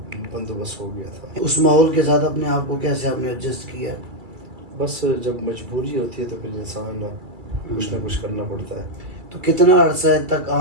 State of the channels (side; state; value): left; late; 2.3 ms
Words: بندوبست ہو گیا تھا. اس ماحول کے ساتھ اپنے آپ کو کیسے آپ نے ایڈجسٹ کیا؟ بس جب مجبوری ہوتی ہے تو پھر انسان کچھ نہ کچھ کرنا پڑتا ہے. تو کتنا عرصہ تک